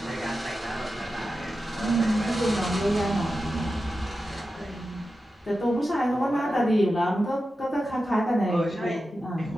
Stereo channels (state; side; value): normal; both; correlation 0.92